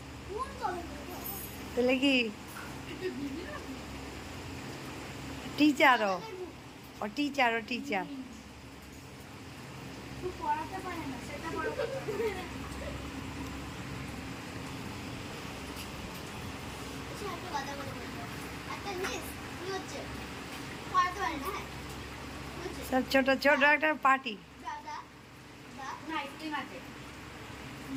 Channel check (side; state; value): both; identical; correlation 1.00